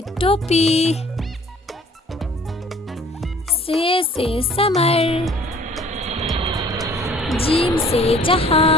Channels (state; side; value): normal; both; correlation 0.53